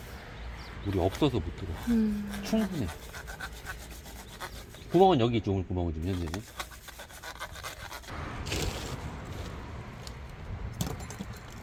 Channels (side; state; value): both; identical; correlation 1.00